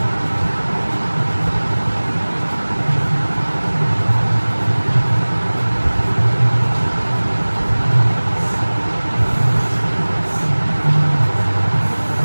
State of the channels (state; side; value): inverted; both; correlation -1.00